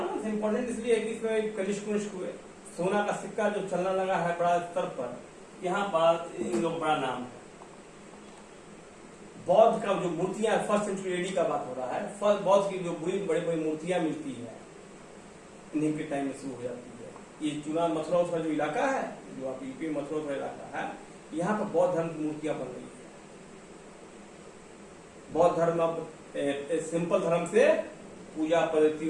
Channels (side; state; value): both; identical; correlation 1.00